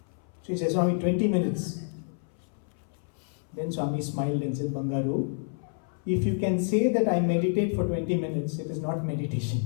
So he says, Swami, 20 minutes. Then Swami smiled and said, Bangaru, if you can say that I meditate for 20 minutes, it is not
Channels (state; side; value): silent; right; 59 dB below the other